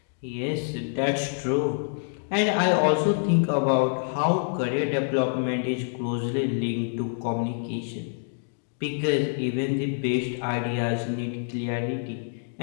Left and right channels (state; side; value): silent; right; digital silence